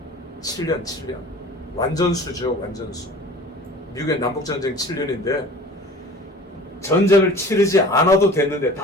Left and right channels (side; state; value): both; normal; correlation 0.43